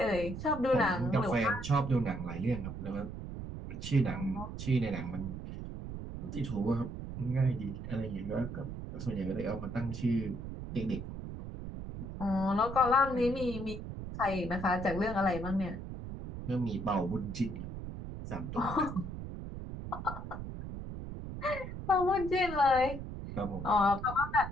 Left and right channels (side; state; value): right; noise; rumble, 8 dB below the sound